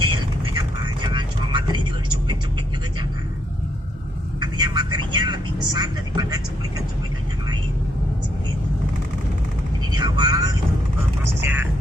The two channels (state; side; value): normal; both; correlation 0.75